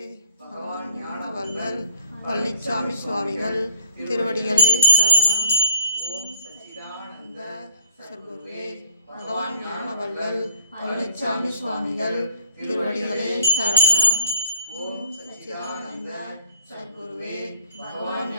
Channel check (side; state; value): both; inverted; correlation -0.68